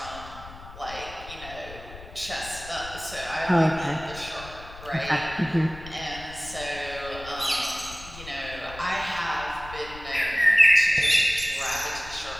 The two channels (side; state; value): left; noise; rumble, 16 dB below the sound